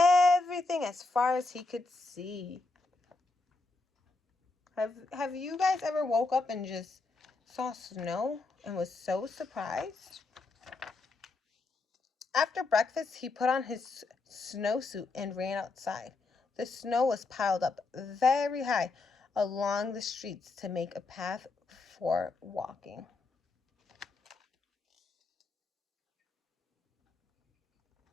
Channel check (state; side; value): quieter; right; 3.6 dB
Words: as far as he could see. Have you guys ever woke up and just saw snow and was so surprised? After breakfast, he put on his snowsuit and ran outside. The snow was piled up very high along the streets to make a path for walking.